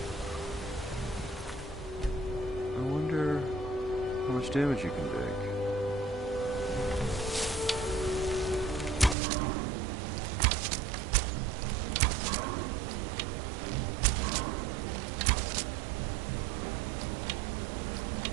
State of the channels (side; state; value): left; drops out; at 9.2 s